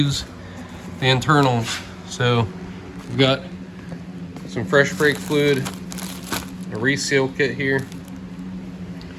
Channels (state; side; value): identical; both; correlation 1.00